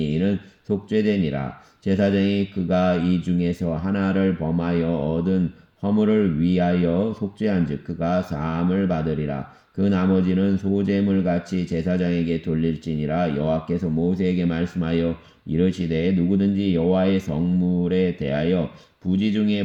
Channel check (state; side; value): identical; both; correlation 1.00